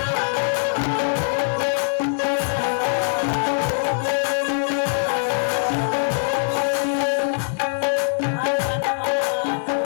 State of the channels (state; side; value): silent; right; 64 dB below the other